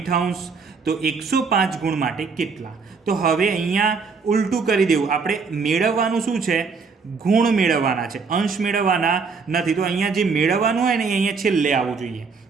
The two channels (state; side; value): quieter; left; 5.0 dB